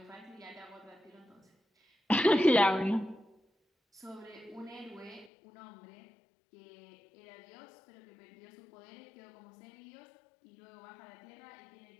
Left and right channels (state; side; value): drops out; right; at 5.3 s